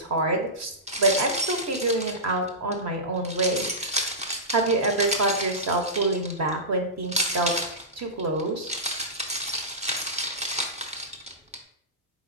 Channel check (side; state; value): both; normal; correlation -0.17